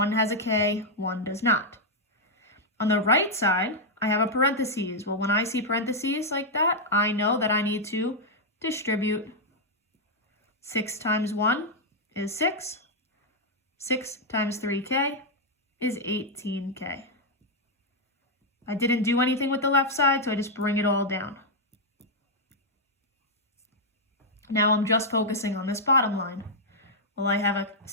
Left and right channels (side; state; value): both; normal; correlation -0.04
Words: has a k, one does not. On the right side, I have a parentheses. Well, when I see parentheses like that, I know that I need to distribute. 6 times 1 is 6. 6 times 3k is 18k. I didn't do anything with the left side, so I just bring it all down. Now I'm just focusing on this bottom line. Well, I have a